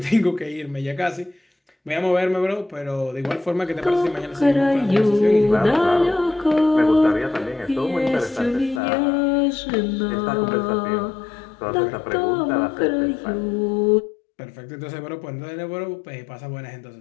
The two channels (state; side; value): drops out; right; at 8.8 s